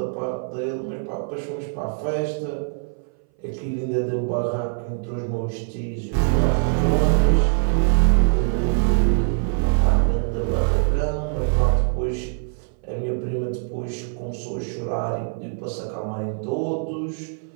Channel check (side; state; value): left; silent; 60 dB below the other